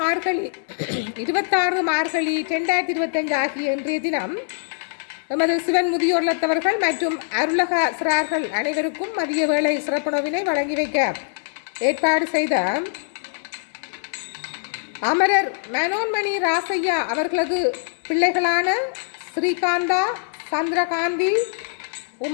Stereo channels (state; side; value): silent; right; 64 dB below the other